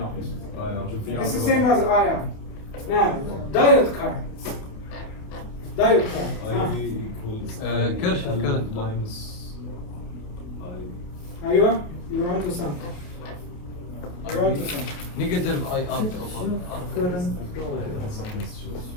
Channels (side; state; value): right; late; 29 ms